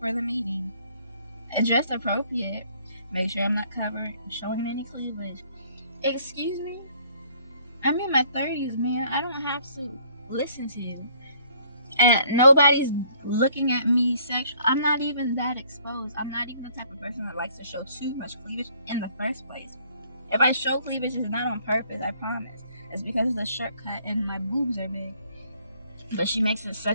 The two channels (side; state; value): both; inverted; correlation -0.61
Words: the meeting. And dressed appropriate, make sure I'm not covered, showing any cleavage. Excuse me? I'm in my 30s, man. I don't have to listen to you. And nobody's looking at me sexual. I'm not even that exposed. I'm not even the type of person that likes to show too much cleavage in the first place. If I show cleavage, it's not on purpose, I promise. It's because of the shirt cut and my boobs are big. But she makes it